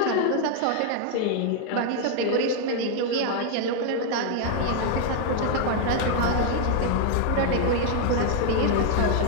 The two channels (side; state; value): both; different; correlation 0.00